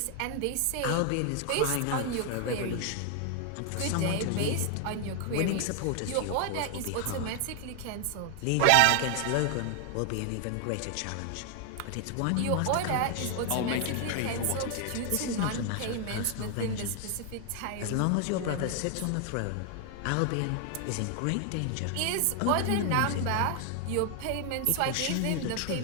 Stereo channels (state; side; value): different; both; correlation 0.00